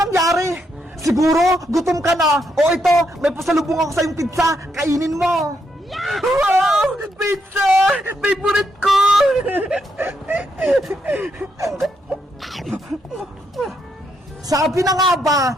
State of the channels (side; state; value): both; normal; correlation 0.78